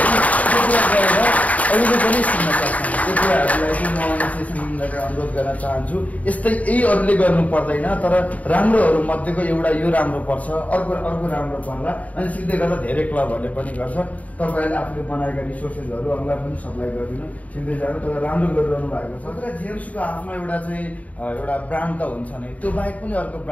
अरूले पनि सुन्न सक्छन्। त्यो कुराहरूलाई चाहिँ म एसोसिएसनबाट अनुरोध गर्न चाहन्छु। यस्तै यही अरूले गर्नु पर्दैन, तर राम्रोहरू मध्येको एउटा यो राम्रो पर्छ, अर्को राम्रो पर्ला, अनि सिक्दै गर्दा धेरै क्लबहरूले पनि गर्छ। तपाईँहरूले आफूले बनाएका रिसोर्सेसहरू अरूलाई पनि सप्लाई गरिदिनु, सिक्दै जानु, तर राम्रो गरिरहनु भएको छ। तर जिएमसीको आफ्नो एउटा चाहिँ एउटा ब्रान्ड त हुन्छ नै, त्यो बाहेक पनि अर्को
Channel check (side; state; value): right; late; 0.070 ms